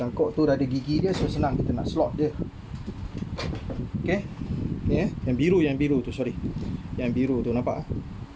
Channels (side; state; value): both; identical; correlation 1.00